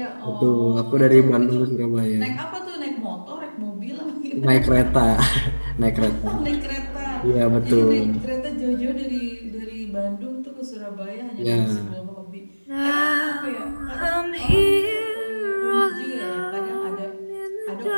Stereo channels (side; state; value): both; inverted; correlation -1.00